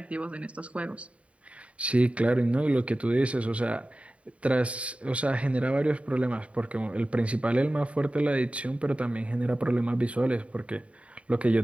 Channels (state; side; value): late; left; 0.063 ms